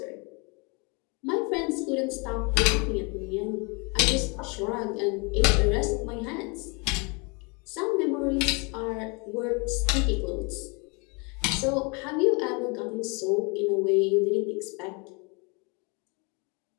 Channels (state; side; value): quieter; right; 31.1 dB